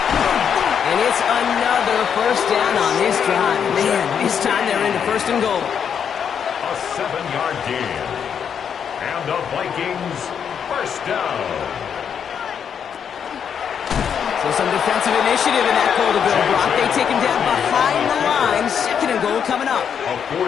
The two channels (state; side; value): quieter; right; 7.7 dB